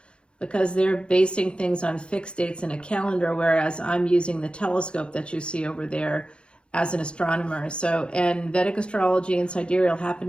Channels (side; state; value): right; late; 0.056 ms